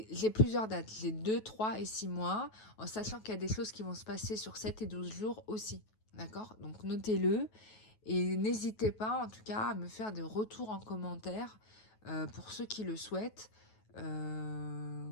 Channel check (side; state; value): right; late; 9.3 ms